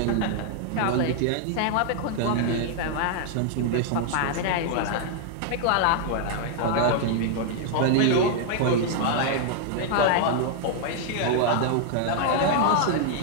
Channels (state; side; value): different; both; correlation 0.00